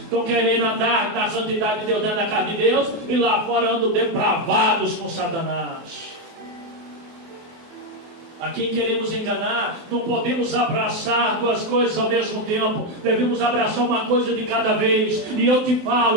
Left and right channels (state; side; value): late; left; 24 ms